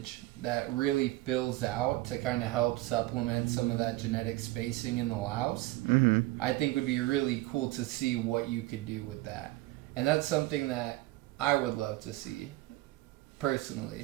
that really fills out to kind of help supplement some of that genetic spacing in the Laos. I think would be really cool to see what you could do with that. And that's something that I would love to see,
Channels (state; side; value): quieter; left; 18.5 dB